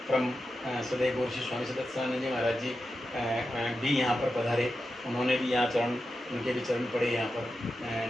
परम सदैव गौर श्री स्वामी सदत्यानंद जी महाराज जी भी यहाँ पर पधारे, उन्होंने भी यहाँ चरण, उनके भी चरण पड़े यहाँ पर।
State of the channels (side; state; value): both; normal; correlation 0.90